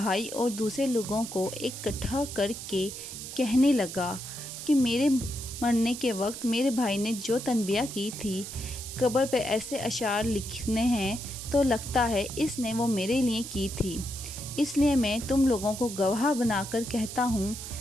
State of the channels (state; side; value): noise; right; hiss, 9 dB below the sound